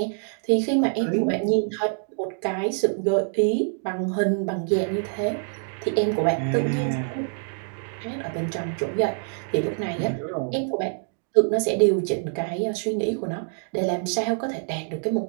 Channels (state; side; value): silent; left; 61 dB below the other